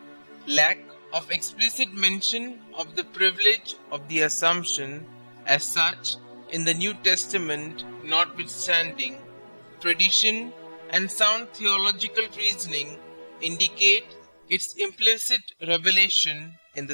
Lack of explicit mention of the privilege of the Assumption as such in the New Testament notwithstanding, tradition and sound theological reasoning indicate its implicit revelation in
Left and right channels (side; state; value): both; inverted; correlation -1.00